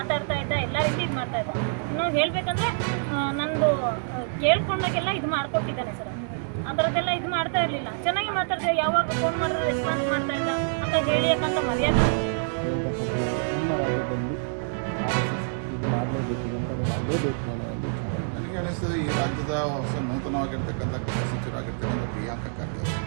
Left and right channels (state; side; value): silent; left; 57 dB below the other